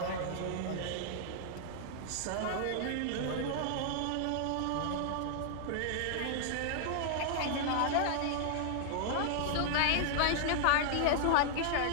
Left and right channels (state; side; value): different; both; correlation -0.01